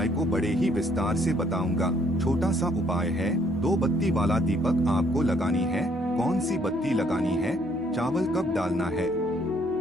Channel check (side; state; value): both; normal; correlation 0.66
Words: को बड़े ही विस्तार से बताऊंगा। छोटा सा उपाय है, 2 बत्ती वाला दीपक आपको लगानी है। कौन सी बत्ती लगानी है, चावल कब डालना है,